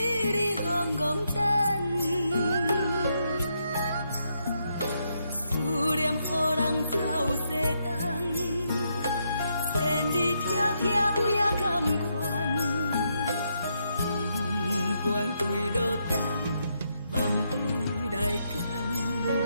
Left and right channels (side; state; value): both; inverted; correlation -0.79